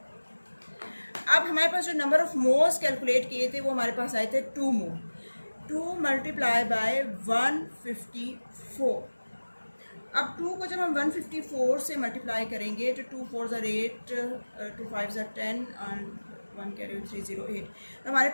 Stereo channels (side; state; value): both; inverted; correlation -1.00